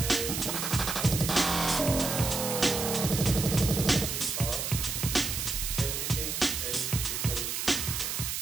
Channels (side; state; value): right; noise; hiss, 2 dB below the sound